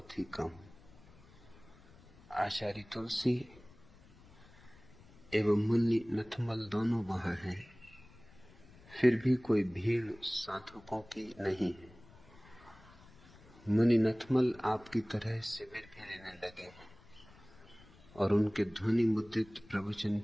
ही कम। आचार्य तुलसी एवं मुनि नथमल दोनों वहां हैं, फिर भी कोई भीड़ साधकों की नहीं है। मुनि नथमल आपकी तरह शिविर भी लेने लगे हैं और उनके ध्वनि मुद्रित प्रवचन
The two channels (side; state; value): left; noise; rumble, 23 dB below the sound